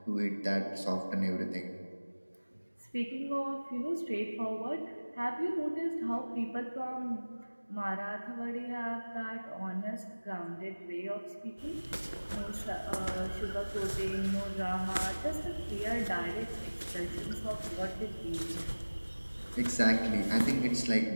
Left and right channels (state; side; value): inverted; both; correlation -1.00